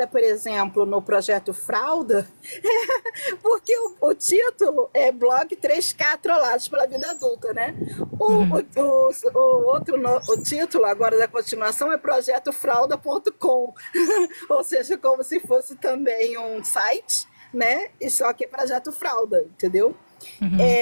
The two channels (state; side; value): inverted; both; correlation -1.00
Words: por exemplo, no projeto Fralda, porque o título é Blog 3K Trollados pela Vida Adulta, né? Uhum, O título agora da continuação é Projeto Fralda.com, ou seja, como se fosse também um site, né? E só que é Projeto Fralda, entendeu? uhum,